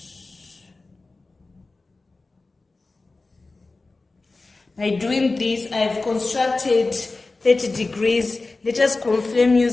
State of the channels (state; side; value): quieter; right; 3.5 dB